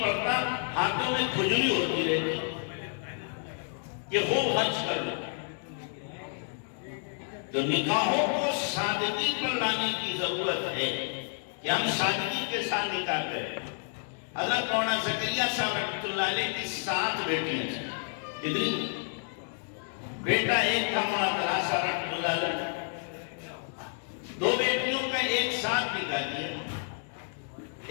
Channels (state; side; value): silent; right; 58 dB below the other